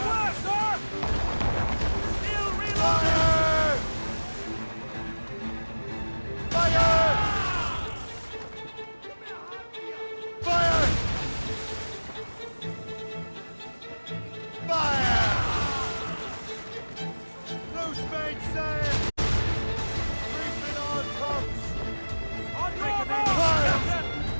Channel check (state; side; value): inverted; both; correlation -1.00